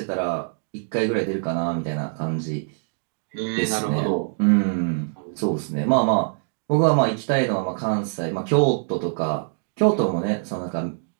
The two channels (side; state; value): left; silent; digital silence